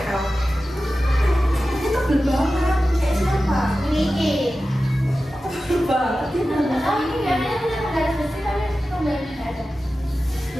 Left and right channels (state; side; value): normal; both; correlation 0.94